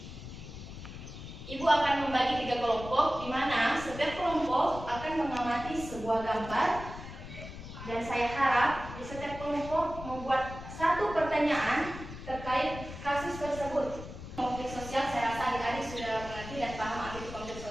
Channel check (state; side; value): noise; left; rumble, 11 dB below the sound